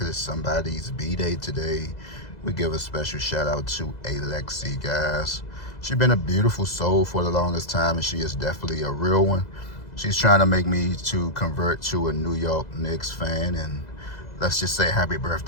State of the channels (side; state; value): right; late; 2.0 ms